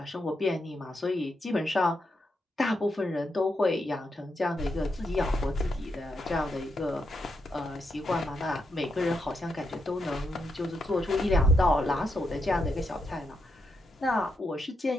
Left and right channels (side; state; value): both; normal; correlation 0.82